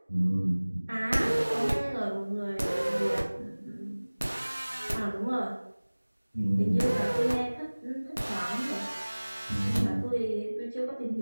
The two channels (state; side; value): inverted; both; correlation -1.00